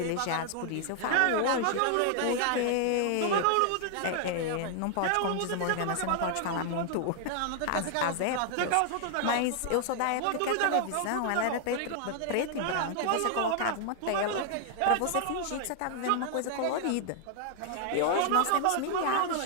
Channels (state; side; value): different; both; correlation 0.00